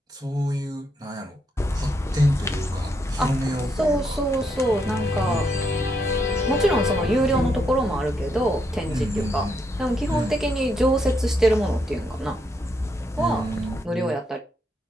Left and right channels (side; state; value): both; normal; correlation 0.77